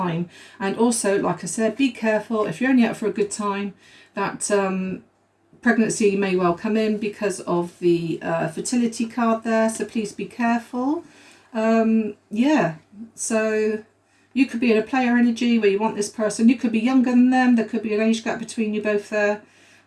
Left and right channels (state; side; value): identical; both; correlation 1.00